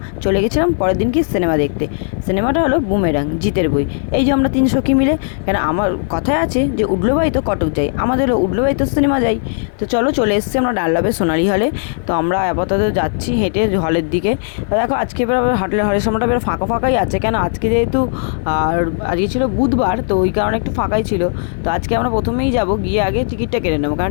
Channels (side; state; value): right; silent; 59 dB below the other